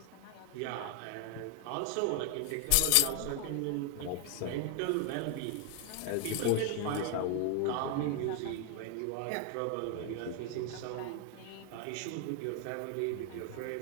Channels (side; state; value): both; different; correlation 0.00